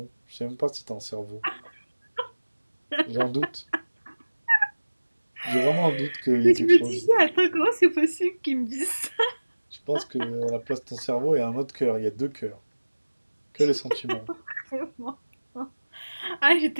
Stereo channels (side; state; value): both; inverted; correlation -1.00